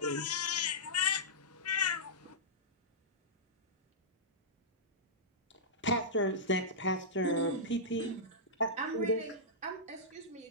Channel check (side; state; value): both; normal; correlation -0.15